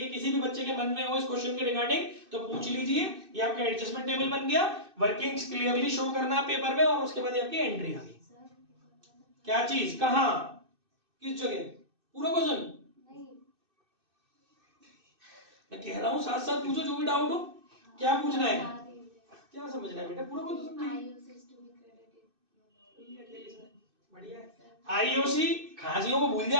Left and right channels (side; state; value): left; late; 2.6 ms